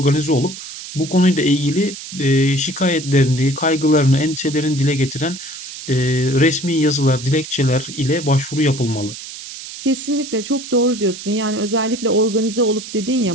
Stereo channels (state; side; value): noise; right; hiss, 12 dB below the sound